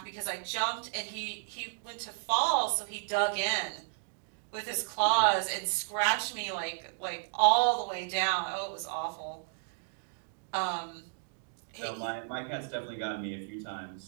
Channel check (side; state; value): left; silent; digital silence